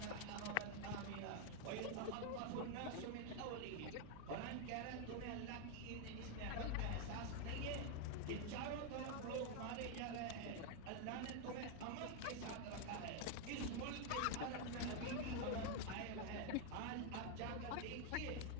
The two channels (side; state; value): both; different; correlation 0.01